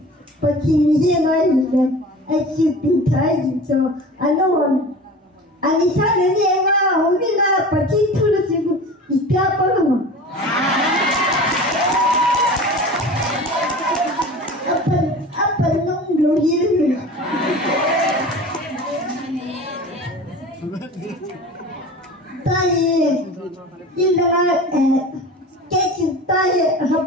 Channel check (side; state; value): both; normal; correlation 0.37